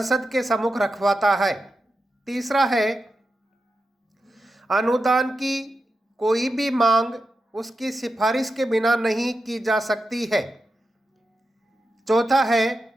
के सम्मुख रखवाता है। तीसरा है अनुदान की कोई भी मांग उसकी सिफारिश के बिना नहीं की जा सकती है। चौथा है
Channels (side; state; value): both; normal; correlation 0.90